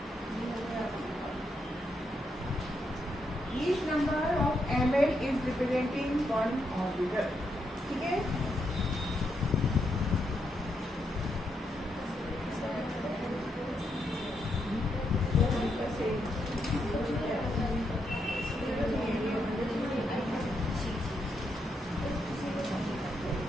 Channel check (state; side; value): normal; both; correlation 0.80